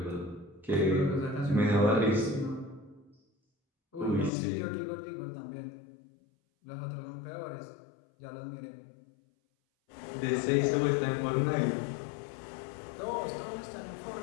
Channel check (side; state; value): right; drops out; at 4.3 s